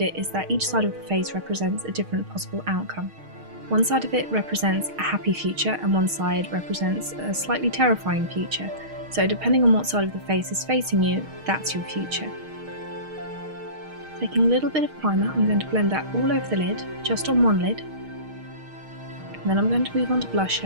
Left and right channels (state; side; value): late; left; 6.4 ms